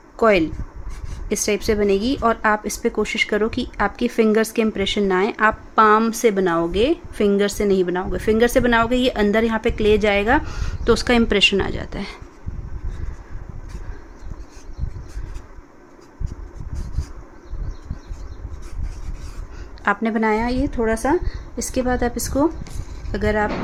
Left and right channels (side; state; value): both; identical; correlation 1.00